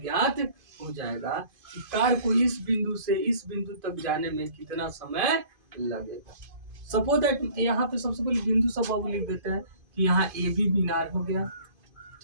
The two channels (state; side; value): late; left; 2.5 ms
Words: हो जाएगा कि कार को इस बिंदु से इस बिंदु तक जाने में कितना समय लगेगा। सपोज दैट यहाँ पे सबसे पहले बिंदु सब बाबू लिख देते हैं कि यहाँ ए बी मीनार हो गया।